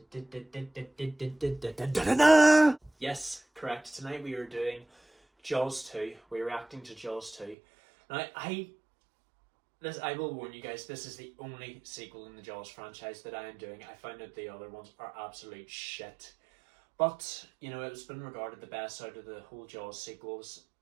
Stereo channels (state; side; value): drops out; left; at 7.6 s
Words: Yes, correct. Tonight we are doing Jaws 2. We're reacting to Jaws 2. Now, I will warn you guys, this is the only sequel in the Jaws franchise that I am doing. I found that the other ones are absolute shit. But, you know, it's been regarded the best out of the whole Jaws sequels.